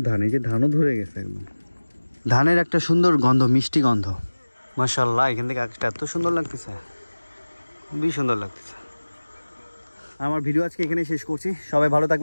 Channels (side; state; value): both; inverted; correlation -1.00